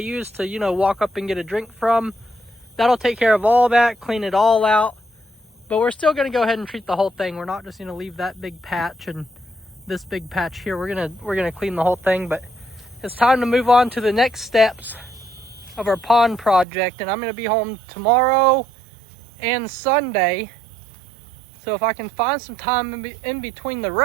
to, you know, walk up and get a drink from. That'll take care of all that, clean it all out. But we're still gonna go ahead and treat the whole thing. We're not just gonna leave that big patch and this big patch here. We're gonna clean the whole thing. But it's time to move on to the next steps of our pond project, and I'm gonna be home tomorrow and Sunday. So if I can find some time in between the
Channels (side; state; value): left; drops out; at 16.7 s